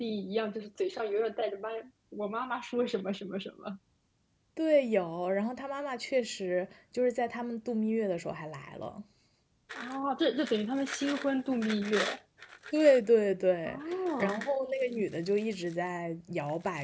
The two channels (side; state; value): both; identical; correlation 1.00